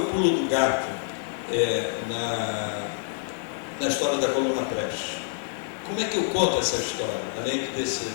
pulo do gato na história da Coluna Prestes? Como é que eu conto essa história? Além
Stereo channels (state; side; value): silent; right; 60 dB below the other